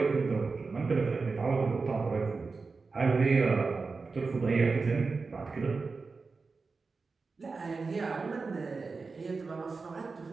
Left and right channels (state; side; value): quieter; left; 4.3 dB